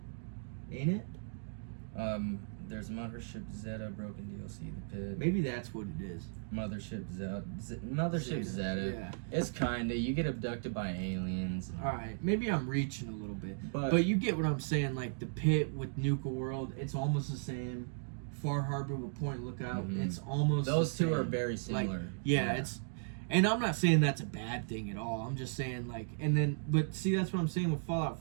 ain't it? There's Mothership Zeta Broken DLC, the pit. Maybe that's what it is. Mothership Zeta. Yeah. It's kinda, you get abducted by aliens. All right, maybe I'm reaching a little bit, But- but you get what I'm saying. Like the pit with Nuka World, it's almost the same. Far Harbor with Point Lookout, it's almost Those the two same. are very similar. Like, yeah, it's, and I'm not saying that's a bad thing at all. I'm just saying like, and then, but see, that's what I'm saying with Fallout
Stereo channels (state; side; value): silent; left; digital silence